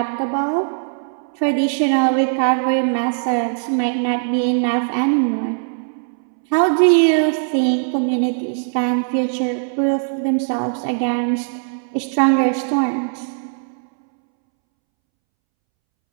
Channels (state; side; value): silent; left; 66 dB below the other